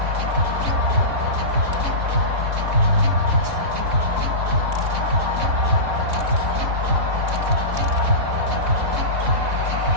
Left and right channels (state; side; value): late; left; 3.6 ms